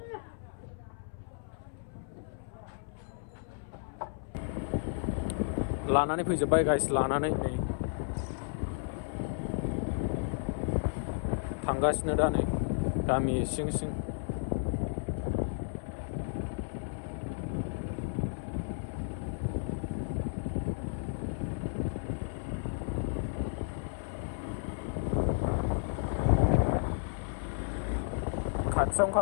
लानानै फैजोब्बाय गाइस, लानानै नै थांगासिनो दा नै गामि सिं।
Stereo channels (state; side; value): silent; right; 56 dB below the other